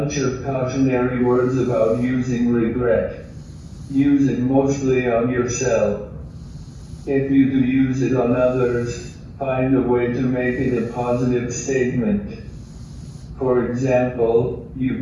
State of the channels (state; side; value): identical; both; correlation 1.00